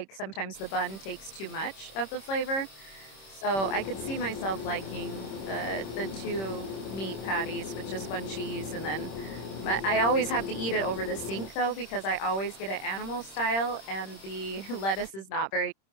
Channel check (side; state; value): right; late; 26 ms